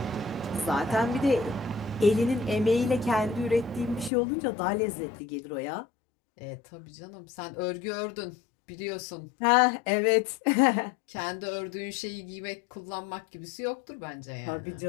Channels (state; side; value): drops out; right; at 4.1 s